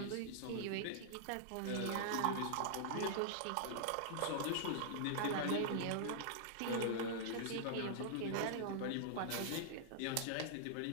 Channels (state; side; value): different; both; correlation -0.01